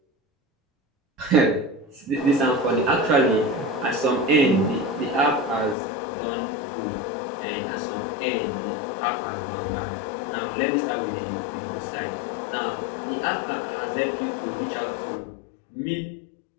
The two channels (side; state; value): right; drops out; at 5.8 s